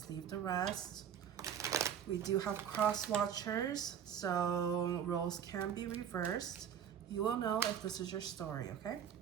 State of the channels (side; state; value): left; quieter; 8.8 dB